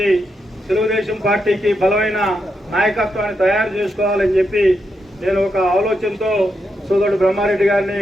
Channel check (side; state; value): both; normal; correlation 0.83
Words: తెలుగుదేశం పార్టీకి బలమైన నాయకత్వాన్ని తయారు చేసుకోవాలని చెప్పి నేను ఒక ఆలోచనతో సోదరుడు బ్రహ్మారెడ్డి గారిని